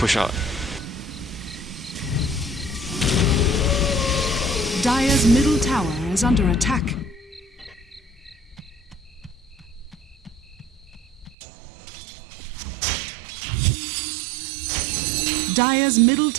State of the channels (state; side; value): drops out; left; at 11.4 s